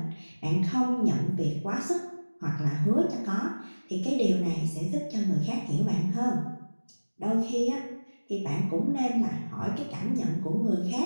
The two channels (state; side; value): inverted; both; correlation -1.00